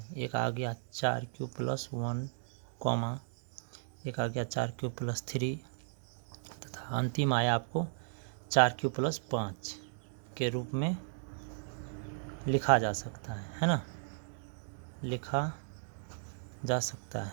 एक आ गया 4q + 1, एक आ गया 4q + 3, तथा अंतिम आया आपको 4q + 5 के रूप में लिखा जा सकता है ना, लिखा जा सकता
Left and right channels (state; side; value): silent; left; digital silence